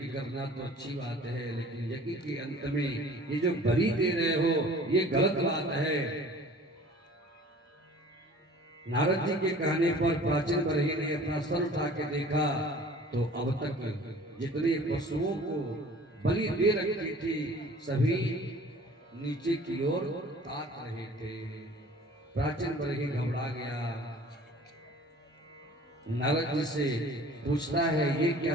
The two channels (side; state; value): both; normal; correlation 0.48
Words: करना तो अच्छी बात है, लेकिन यज्ञ के अंत में ये जो बलि दे रहे हो ये गलत बात है। नारद जी के कहने पर प्राचीन बरही ने अपना सर उठा के देखा तो अब तक जितने पशुओं को बलि दे रखी थी सभी नीचे की ओर ताक रहे थे। प्राचीन बरही घबरा गया। नारद जी से पूछता है, ये